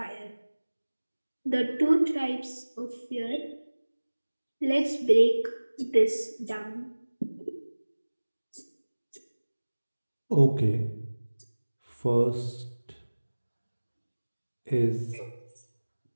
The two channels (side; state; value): both; inverted; correlation -1.00